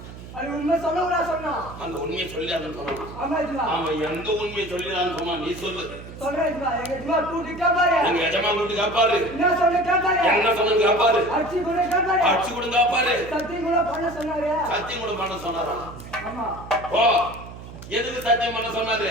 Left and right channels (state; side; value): noise; right; hum, 14 dB below the sound